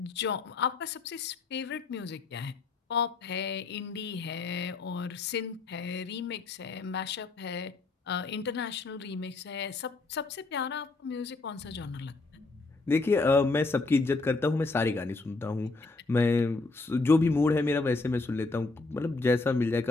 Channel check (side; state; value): right; quieter; 3.6 dB